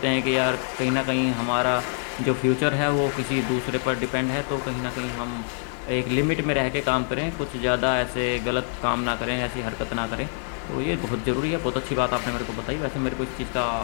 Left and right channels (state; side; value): silent; right; 61 dB below the other